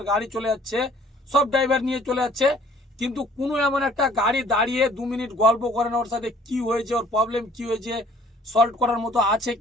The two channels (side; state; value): both; normal; correlation 0.56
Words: গাড়ি চলে যাচ্ছে, সব ড্রাইভার নিয়ে চলে যাচ্ছে, কিন্তু কোনো এমন একটা গাড়ি দাঁড়িয়ে 2 মিনিট গল্প করে না, ওর সাথে কি হয়েছে, ওর প্রবলেম কি হয়েছে, সলভ করার মতো আছে